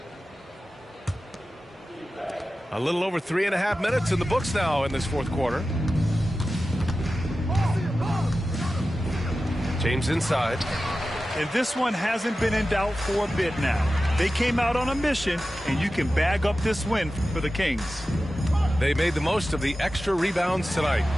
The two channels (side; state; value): both; normal; correlation 0.94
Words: A little over 3.5 minutes in the books now in this fourth quarter. James inside. And this one hasn't been in doubt for a bit now. They came out on a mission, and you can bag up this win for the Kings. They made the most of the extra rebounds tonight.